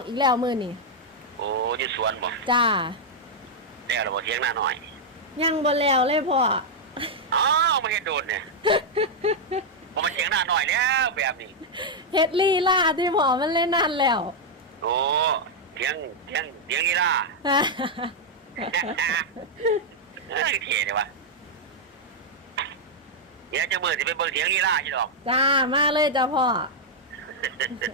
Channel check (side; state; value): both; normal; correlation -0.03